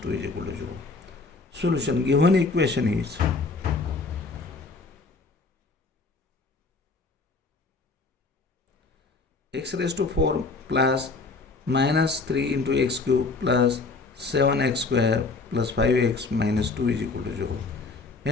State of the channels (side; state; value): right; quieter; 3.9 dB